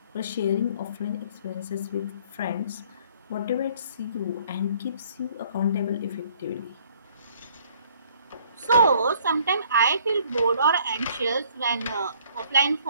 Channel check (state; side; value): inverted; both; correlation -0.59